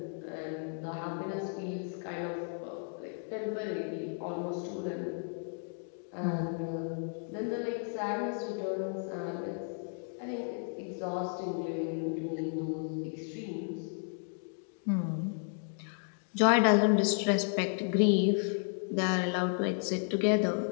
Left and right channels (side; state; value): right; silent; 55 dB below the other